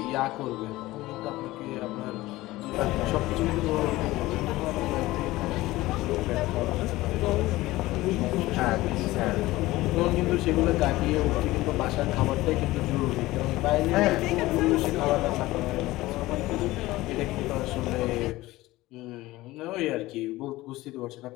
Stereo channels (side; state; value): right; quieter; 18.2 dB